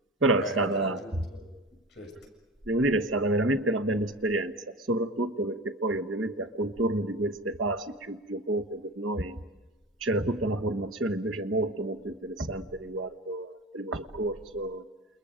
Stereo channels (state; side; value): normal; both; correlation 0.32